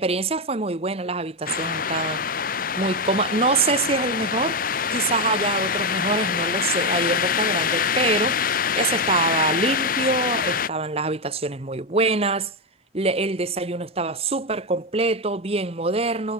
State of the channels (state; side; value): normal; both; correlation 0.08